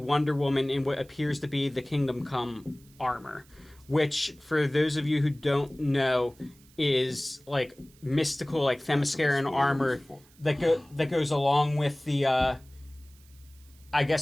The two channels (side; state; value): right; noise; hiss, 28 dB below the sound